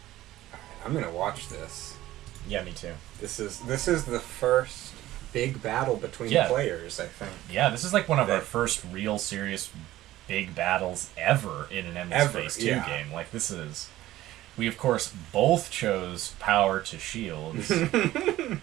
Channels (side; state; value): left; quieter; 15.3 dB